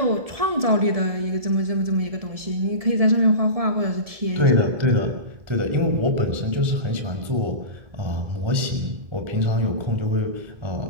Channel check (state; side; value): late; left; 1.7 ms